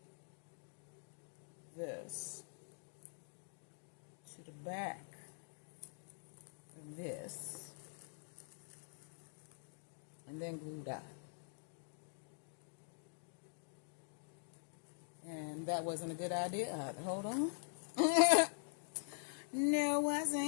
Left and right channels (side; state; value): right; silent; digital silence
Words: this to the back of this and then glue that. And that wasn't a good idea either. Hold on. No, it